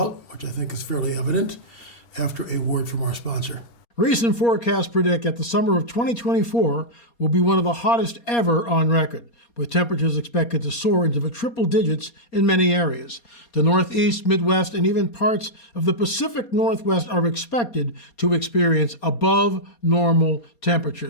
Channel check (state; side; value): late; right; 4.2 ms